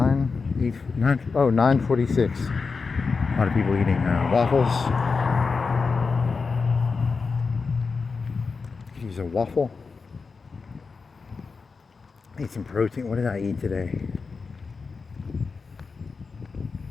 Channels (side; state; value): right; quieter; 4.7 dB